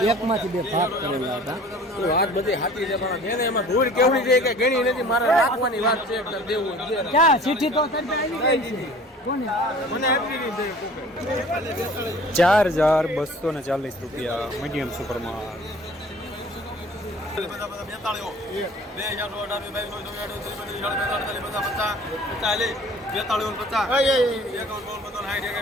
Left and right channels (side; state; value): both; normal; correlation 0.47